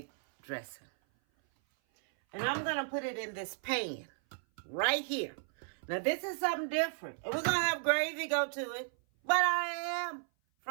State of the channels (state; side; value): silent; left; 55 dB below the other